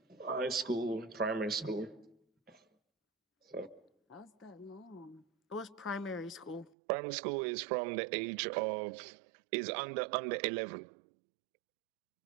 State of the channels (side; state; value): left; drops out; at 6.7 s